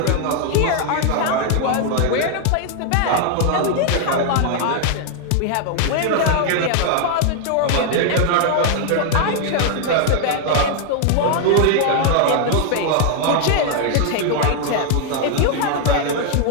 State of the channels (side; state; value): both; different; correlation 0.00